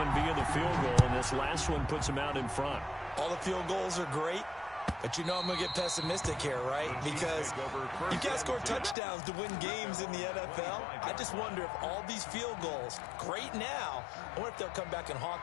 via the field goal, and this last one puts him out in front. All the field goals are great. But you know I'm going to get pessimistic here, right? Because you can't score touchdowns to win games in the NFL. I just wonder if all these field goals, great now, I wonder if they'll come back and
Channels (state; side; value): drops out; right; at 9.0 s